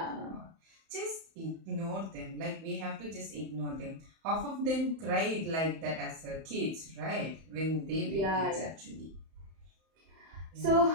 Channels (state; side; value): late; left; 31 ms